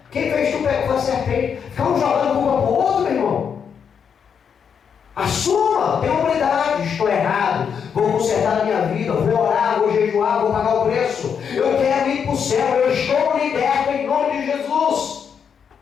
quem fez tu pecar? Foi a serpente. Ficamos jogando culpa pro outro, meu irmão. Assuma, tenha humildade. Estou errado, vou consertar a minha vida, vou orar, vou jejuar, vou pagar o preço. Eu quero ir para o céu, eu estou liberto em nome de Jesus.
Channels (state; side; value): quieter; right; 7.1 dB